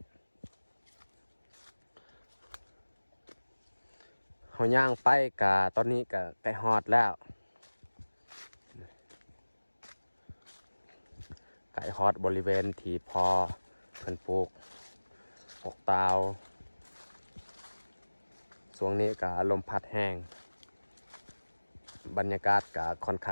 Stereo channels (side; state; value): both; inverted; correlation -1.00